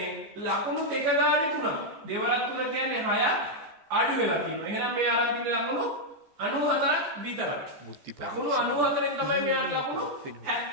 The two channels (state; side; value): late; left; 14 ms